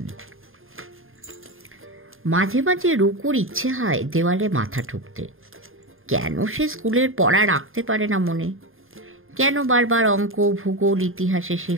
মাঝে মাঝে রুকুর ইচ্ছে হয় দেওয়ালে মাথা ঠুকতে। কেন সে স্কুলের পড়া রাখতে পারে না মনে? কেন বারবার অঙ্ক, ভূগোল, ইতিহাসে সে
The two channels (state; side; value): late; left; 0.60 ms